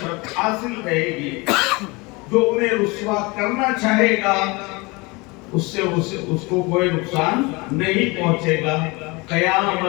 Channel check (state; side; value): quieter; right; 25.7 dB